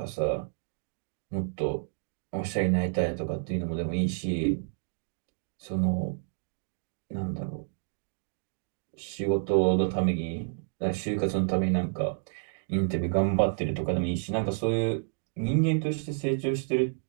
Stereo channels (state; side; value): silent; left; digital silence